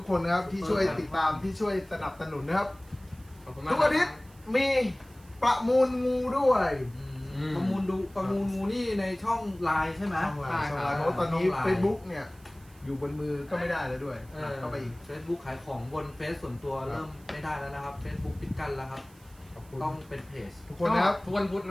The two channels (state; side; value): noise; right; hiss, 27 dB below the sound